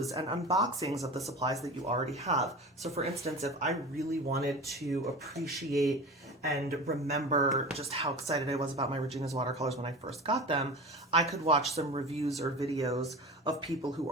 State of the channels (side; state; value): both; normal; correlation 0.32